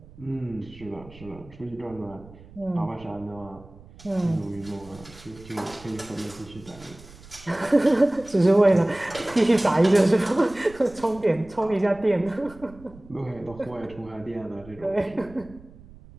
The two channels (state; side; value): noise; right; rumble, 21 dB below the sound